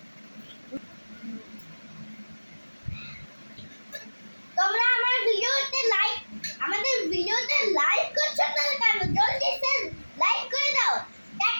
তোমরা আমাদের ভিডিওতে লাইক করছো না কেন? জলদি লাইক করে দাও।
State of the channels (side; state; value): both; inverted; correlation -1.00